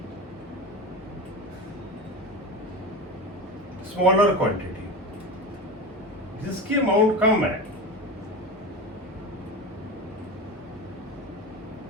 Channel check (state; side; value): normal; both; correlation 0.25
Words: smaller quantity, जिसकी अमाउंट कम है।